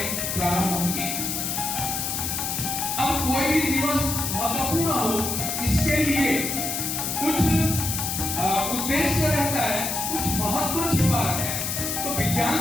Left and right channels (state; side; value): noise; left; hiss, 2 dB below the sound